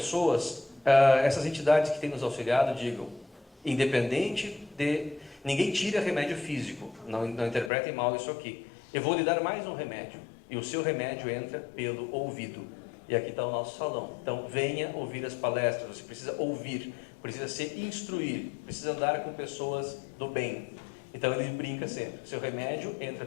essas entidades que têm nos auxiliado, digam, independente de Ninguém tira remédio físico, não interpretem mal isso aqui. Eu vou lhe dar mais um remédio, e o seu remédio entra pelo ouvido. E aqui está o nosso salão. Então, venha ouvir as palestras, você precisa ouvir, precisa se instruir, precisa andar com pessoas do bem. Então, ele brinca sempre, seu remédio entra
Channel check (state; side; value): drops out; right; at 7.7 s